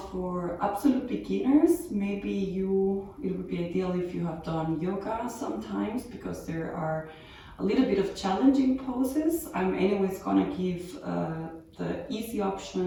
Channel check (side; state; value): both; identical; correlation 1.00